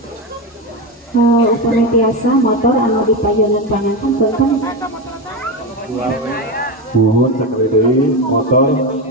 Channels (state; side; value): normal; both; correlation 0.15